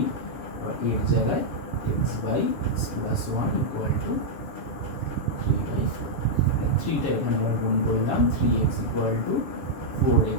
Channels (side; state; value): right; late; 6.9 ms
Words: আর এর জায়গায় x by x plus 1 equal to 3 by 4। 3টা এখানে আবার গুণ করলাম, 3x equal to